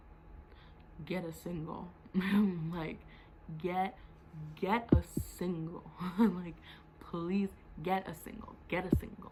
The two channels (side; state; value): both; identical; correlation 1.00